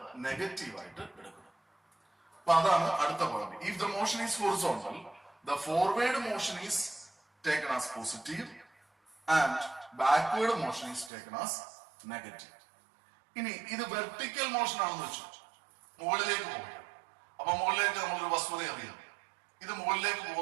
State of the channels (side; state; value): left; drops out; at 11.1 s